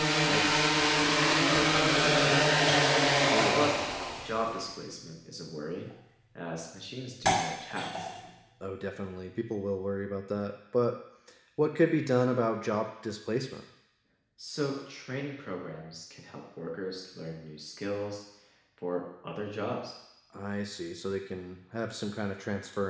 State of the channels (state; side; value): identical; both; correlation 1.00